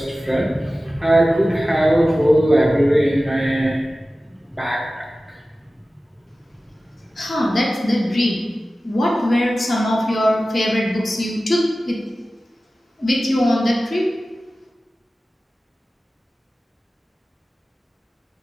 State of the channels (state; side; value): normal; both; correlation 0.96